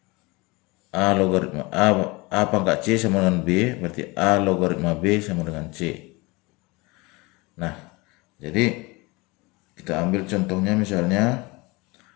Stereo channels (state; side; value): quieter; right; 24.6 dB